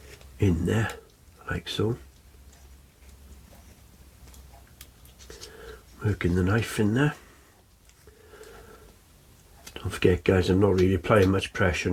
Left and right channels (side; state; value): both; identical; correlation 1.00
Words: in there, like so. Working the knife in there. Don't forget, guys, I'm not really applying much pressure